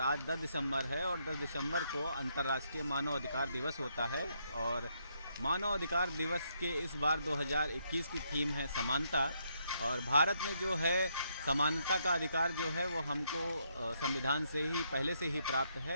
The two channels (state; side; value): inverted; both; correlation -0.76